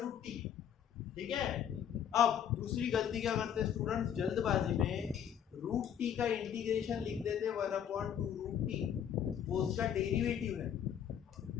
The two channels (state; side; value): quieter; right; 9.0 dB